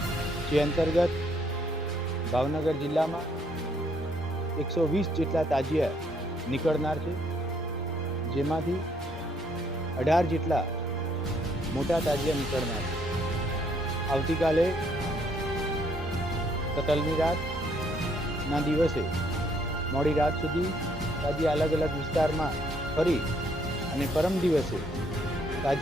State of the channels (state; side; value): normal; both; correlation 0.68